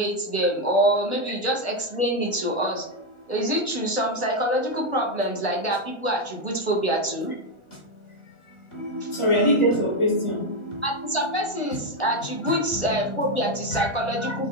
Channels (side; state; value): right; late; 1.4 ms